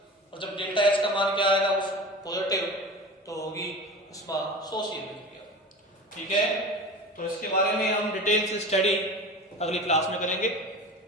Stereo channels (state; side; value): normal; both; correlation 0.33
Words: और जब डेल्टा एच का मान क्या आएगा उस पॉजिटिव तो होगी ऊष्माशोषीय विक्रिया। ठीक है, तो इसके बारे में हम डिटेल से स्टडी अगली क्लास में करेंगे।